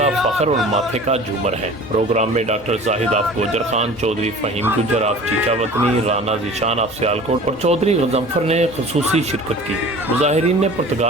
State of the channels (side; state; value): both; normal; correlation 0.42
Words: فخر اور ماتھے کا جھومر ہے۔ پروگرام میں doctor Zahid of Gujar Khan, Chaudhry Faheem Gujjar of Chichawatni, Rana Zeeshan of Sialkot اور چودھری غضنفر نے خصوصی شرکت کی۔ مظاہرین نے